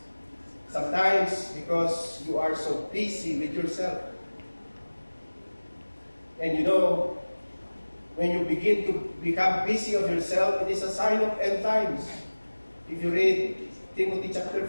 Sometimes because you are so busy with yourself. And you know, when you begin to become busy of yourself, it is a sign of end times. If you read Timothy chapter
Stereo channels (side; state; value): both; inverted; correlation -1.00